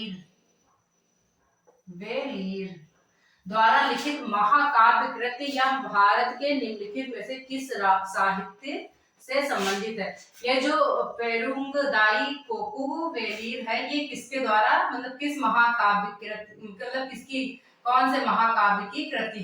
द्वारा लिखित महाकाव्य कृति या भारत के निम्नलिखित में से किस साहित्य से संबंधित है? ये जो पेरुंगदाई कोकू वेलीर है, ये किसके द्वारा मतलब किस महाकाव्य कृति, मतलब किसकी, कौन से महाकाव्य की कृति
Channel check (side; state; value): both; identical; correlation 1.00